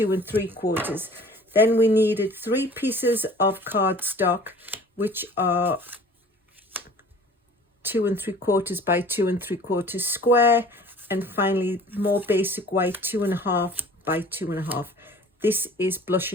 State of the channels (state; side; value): normal; both; correlation 0.47